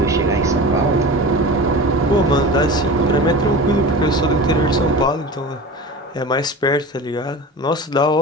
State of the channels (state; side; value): normal; both; correlation 0.32